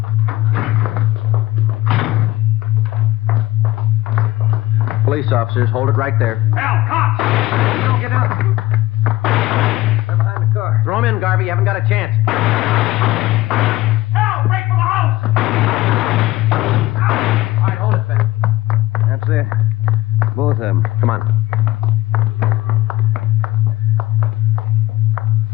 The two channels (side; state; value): right; quieter; 17.7 dB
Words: Police officers, hold it right there. Al, cops! Don't get out. They're behind the car. Throw him in, Garvey. You haven't got a chance. Al, break for the house! All right, hold it, Ben. That's it. Both of them. Come on.